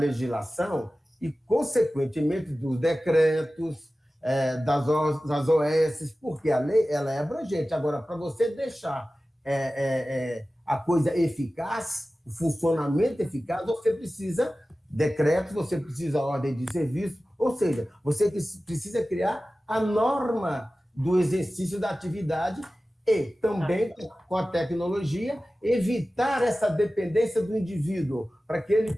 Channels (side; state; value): both; normal; correlation 0.96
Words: e, consequentemente, dos decretos, das OS, porque a lei ela é abrangente. Agora, para você deixar a coisa eficaz, o funcionamento eficaz, você precisa decretos, você precisa ordem de serviço, ou seja, você precisa criar a norma do exercício da atividade e também, com a tecnologia, evitar essa dependência do indivíduo, para que ele